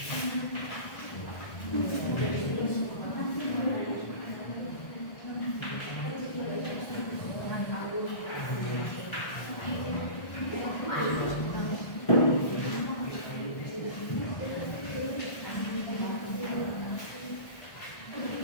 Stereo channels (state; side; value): late; right; 1.4 ms